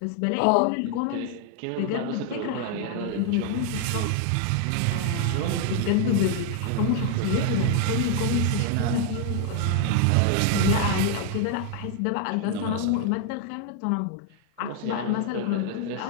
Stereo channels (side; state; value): both; different; correlation 0.00